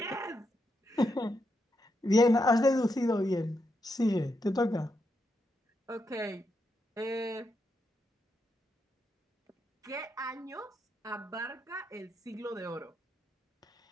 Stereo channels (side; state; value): both; normal; correlation 0.82